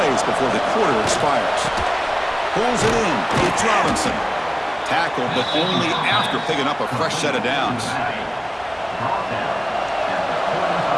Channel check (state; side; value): identical; both; correlation 1.00